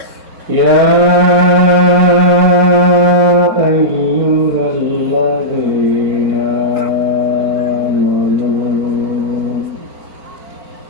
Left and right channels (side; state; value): left; late; 4.4 ms